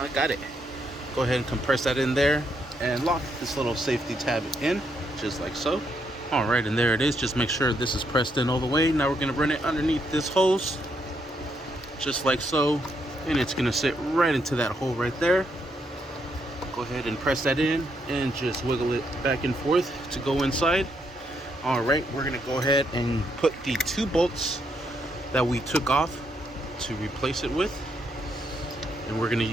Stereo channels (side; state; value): both; normal; correlation 0.76